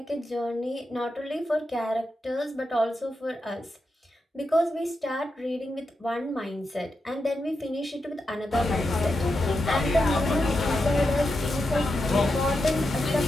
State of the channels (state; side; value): normal; both; correlation 0.87